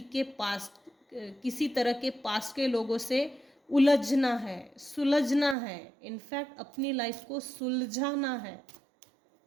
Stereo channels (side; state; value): left; drops out; at 5.6 s